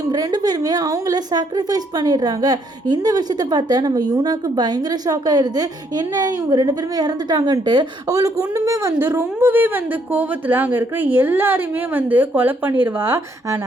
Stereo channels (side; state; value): both; normal; correlation 0.70